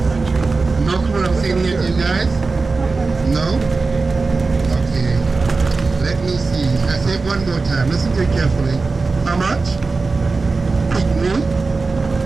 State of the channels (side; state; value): left; quieter; 4.0 dB